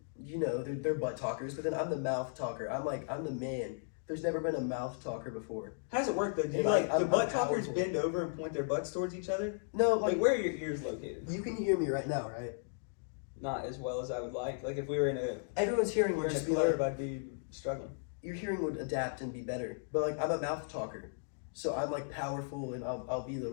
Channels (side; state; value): right; silent; digital silence